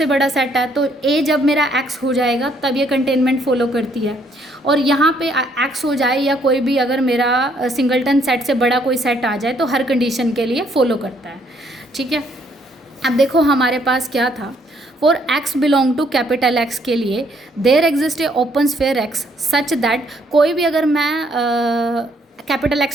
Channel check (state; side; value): normal; both; correlation 0.68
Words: बड़ा सेट है, तो ए जब मेरा एक्स हो जाएगा तब ये कंटेनमेंट फॉलो करती है। और यहाँ पे एक्स हो जाए या कोई भी अगर मेरा सिंगलटन सेट से बड़ा कोई सेट आ जाए तो हर कंडीशन के लिए फॉलो करता है, ठीक है। अब देखो हमारे पास क्या था, for x belong to capital x के लिए there exist a open sphere x such that, कोई भी अगर मैं कैपिटल